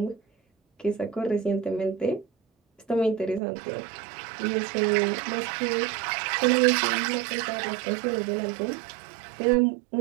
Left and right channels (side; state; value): left; drops out; at 3.4 s